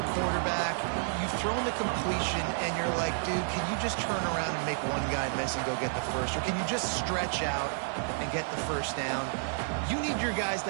quarterback. You've thrown the completion, and you're like, dude, can you just turn around and make one guy miss and go get the first? Or can you just stretch out and get the 1st down? You need your guys to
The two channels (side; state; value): left; silent; 57 dB below the other